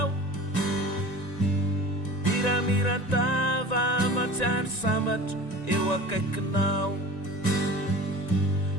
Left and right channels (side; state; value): right; late; 1.9 ms